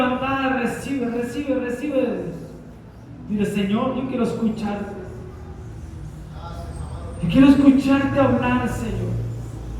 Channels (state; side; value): identical; both; correlation 1.00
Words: recibe, recibe, recibe. Dile, Señor, yo quiero escucharte. Yo quiero escucharte hablar, Señor.